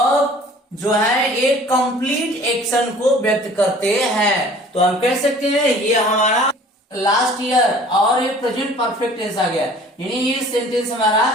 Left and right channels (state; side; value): normal; both; correlation 0.49